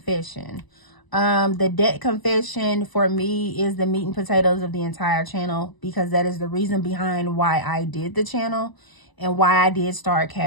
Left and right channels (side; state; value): right; late; 1.0 ms